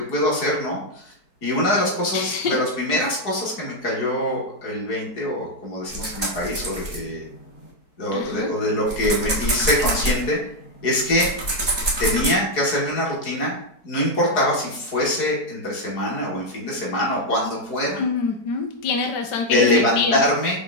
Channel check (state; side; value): late; right; 4.5 ms